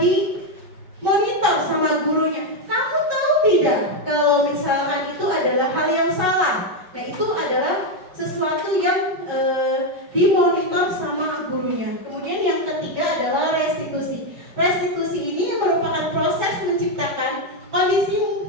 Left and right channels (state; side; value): late; left; 5.2 ms